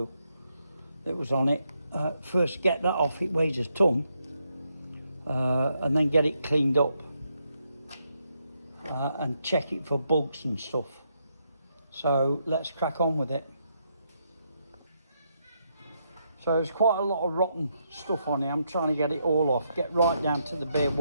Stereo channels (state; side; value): inverted; both; correlation -0.79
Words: that was on it. First get that off, it weighs a ton. And then get it cleaned up. And check it for bugs and stuff. So let's crack on with it. So there's quite a lot of rotten stuff on here. I'm trying to get it all off, get right down to the bare